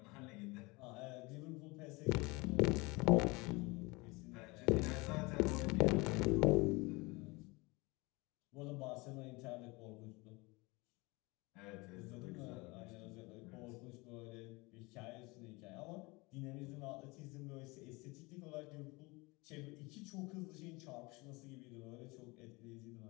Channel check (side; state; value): right; quieter; 24.8 dB